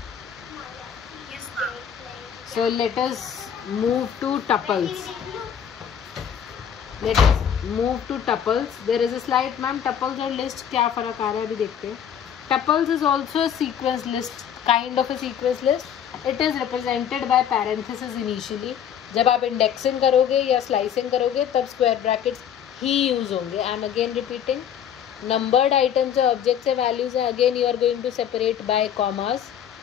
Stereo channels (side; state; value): right; quieter; 8.9 dB